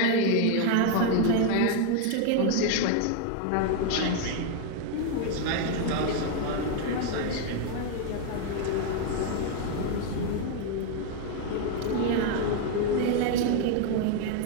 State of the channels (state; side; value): different; both; correlation 0.00